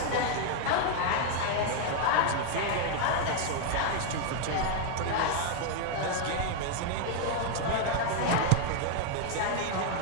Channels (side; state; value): both; different; correlation 0.00